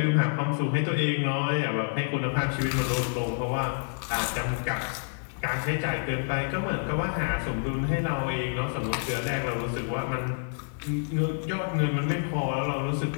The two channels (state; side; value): silent; right; digital silence